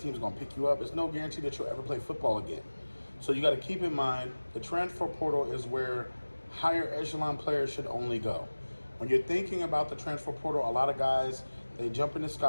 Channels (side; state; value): both; inverted; correlation -1.00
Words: going to pick you up. There's no guarantee that you'll ever play football again. So you got to keep in mind the transfer portal is where higher echelon players should only go. When you're thinking about the transfer portal, a lot of guys, they jump into